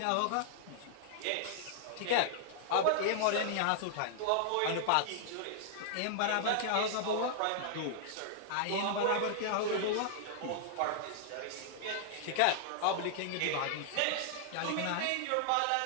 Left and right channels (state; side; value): different; both; correlation -0.01